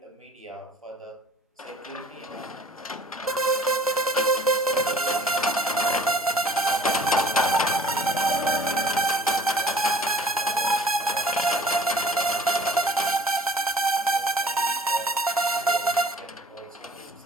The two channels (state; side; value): normal; both; correlation 0.50